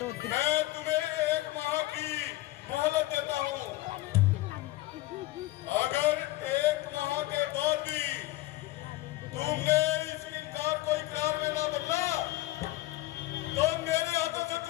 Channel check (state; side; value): quieter; right; 18.1 dB